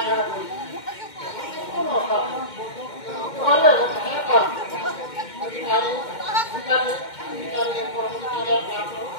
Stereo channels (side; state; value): right; late; 2.2 ms